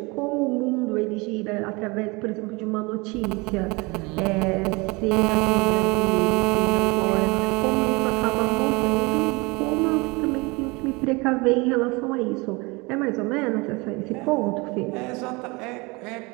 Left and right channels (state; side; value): quieter; left; 26.1 dB